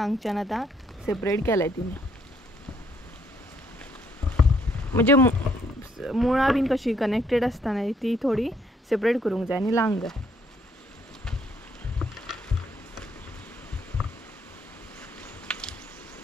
आतां सेपरेट केलाय तिने, म्हणजे मुळां बीन कशी कनेक्टेड आसता न्हय ती थोडी सेपरेट करूंक जाय आनी लावंक जाय.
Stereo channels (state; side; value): normal; both; correlation 0.69